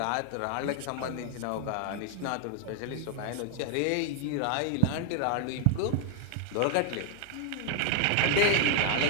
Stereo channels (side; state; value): both; different; correlation 0.00